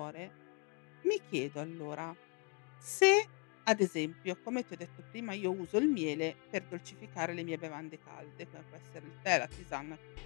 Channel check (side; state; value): right; quieter; 34.0 dB